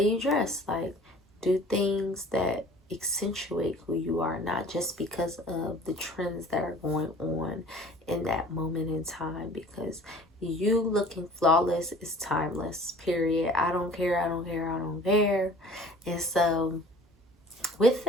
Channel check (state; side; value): normal; both; correlation 0.47